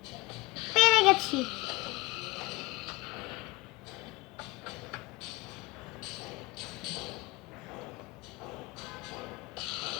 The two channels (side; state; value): right; quieter; 21.8 dB